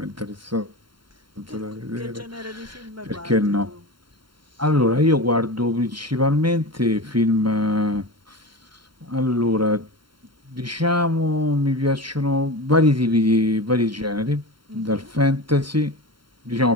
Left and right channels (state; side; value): late; left; 0.73 ms